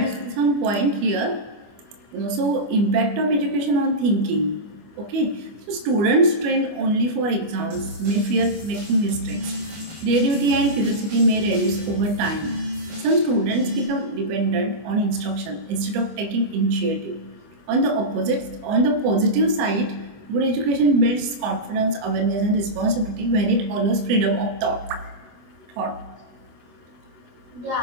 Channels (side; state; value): left; late; 25 ms